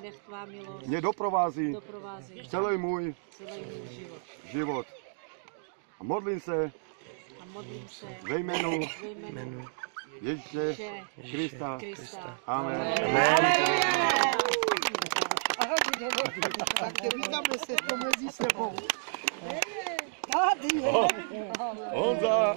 mě doprovází celý můj život. A modlím se ve jménu Ježíše Krista. Amen. Tak vítáme se to mezi sebou. Tady je.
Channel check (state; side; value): silent; left; digital silence